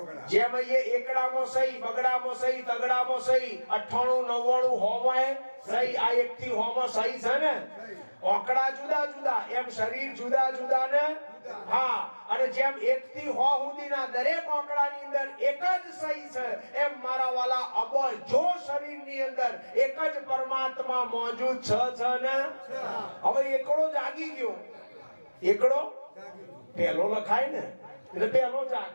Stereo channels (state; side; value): inverted; both; correlation -1.00